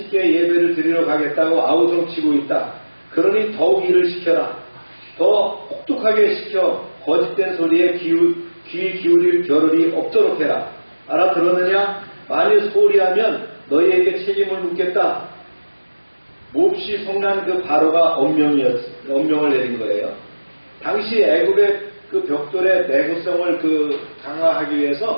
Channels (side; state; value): both; inverted; correlation -1.00